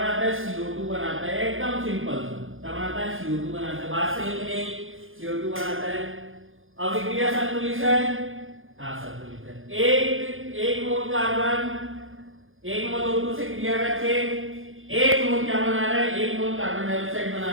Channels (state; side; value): late; left; 0.59 ms